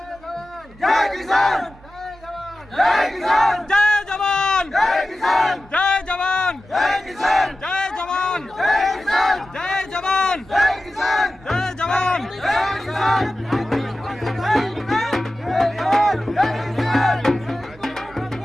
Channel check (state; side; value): normal; both; correlation 0.94